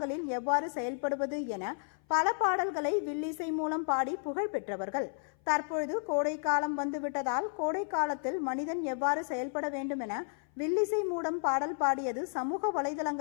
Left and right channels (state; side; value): silent; right; 56 dB below the other